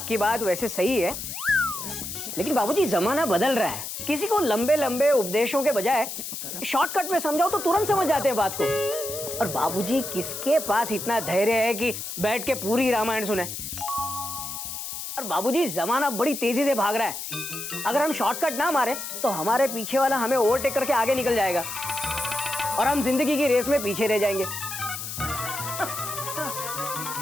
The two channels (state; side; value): noise; left; hiss, 7 dB below the sound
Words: बात वैसे सही है, लेकिन बाबूजी जमाना बदल रहा है। किसी को लंबे लंबे उपदेशों के बजाय शॉर्टकट में समझाओ तो तुरंत समझ जाते हैं बात को। और बाबूजी, किसके पास इतना धैर्य है कि बैठ के पूरी रामायण सुने? और बाबूजी, जमाना बड़ी तेजी से भाग रहा है। अगर हम शॉर्टकट ना मारे तो हमारे पीछे वाला हमें ओवरटेक करके आगे निकल जाएगा और हम जिंदगी की रेस में पीछे रह जाएंगे।